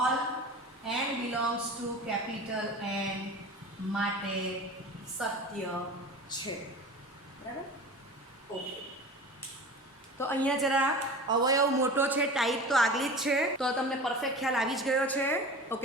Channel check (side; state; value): both; normal; correlation 0.35